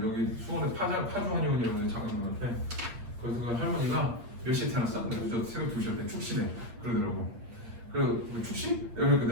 여기 수원에 파주 한의원이라고 장관님한테. 그래서 그 할머니가 몇 시에 태어났어? 그래서 저 새벽 2시였대. 축시네. 그러더라고. 그 축시?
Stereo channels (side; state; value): left; late; 8.6 ms